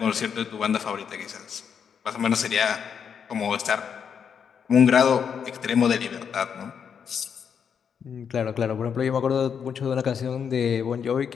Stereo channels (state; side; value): quieter; right; 7.2 dB